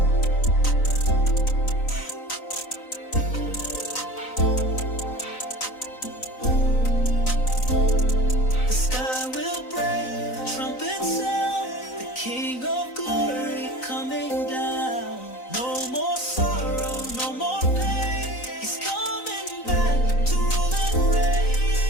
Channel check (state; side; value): late; right; 3.9 ms